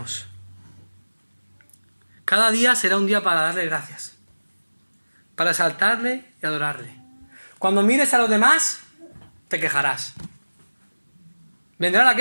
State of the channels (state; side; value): inverted; both; correlation -1.00